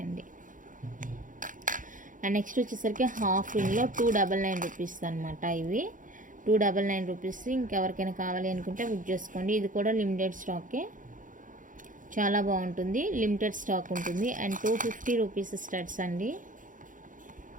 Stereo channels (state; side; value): late; left; 0.38 ms